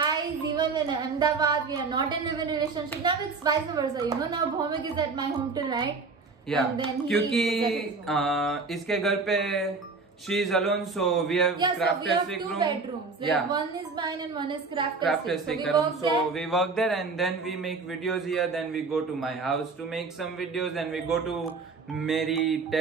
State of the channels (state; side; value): quieter; left; 4.3 dB